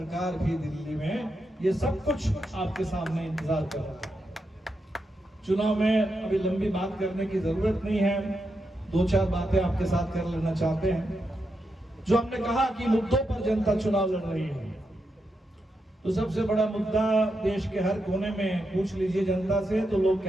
भी दिल्ली में, ये सब कुछ आपके सामने इंतजार कर रहा है। चुनाव में अभी लंबी बात करने की जरूरत नहीं है, 2-4 बातें आपके साथ कर लेना चाहते हैं। जो हमने कहा कि मुद्दों पर जनता चुनाव लड़ रही है, तो सबसे बड़ा मुद्दा देश के हर कोने में पूछ लीजिए जनता से तो लोग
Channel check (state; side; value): normal; both; correlation 0.85